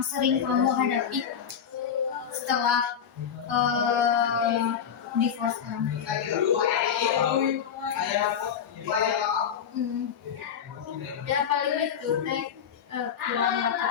sering kamu hadapi setelah divorce orang? Ya paling itu teh kurang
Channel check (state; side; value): quieter; right; 8.1 dB